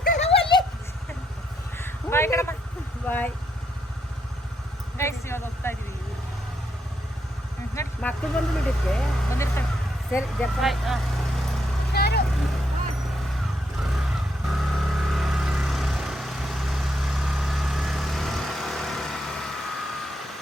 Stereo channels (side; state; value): both; normal; correlation 0.78